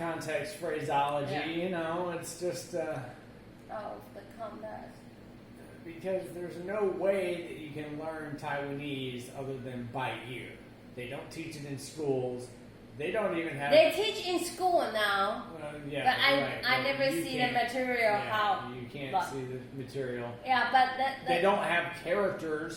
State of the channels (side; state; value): both; identical; correlation 1.00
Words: phraseology, Yeah. you know, it's just of the context. because there's no way that you can learn Taiwanese other than by ear. They don't teach it in schools. They don't even have. They teach in school now, Yeah, but right. I never You see the can't- material yeah, how. you can't but- see the material. Yeah, but that They don't have